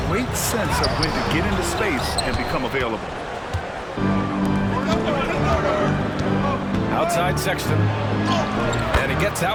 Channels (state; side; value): identical; both; correlation 1.00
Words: great sense of when to get into space and become available. Outside Sexton. And he gets